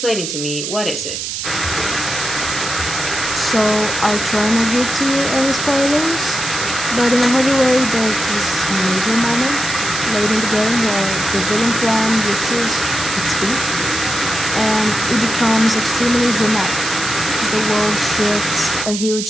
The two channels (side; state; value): right; noise; hiss, 4 dB below the sound